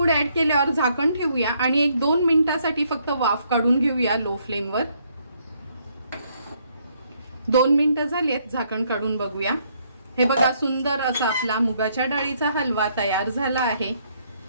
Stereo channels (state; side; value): inverted; both; correlation -0.71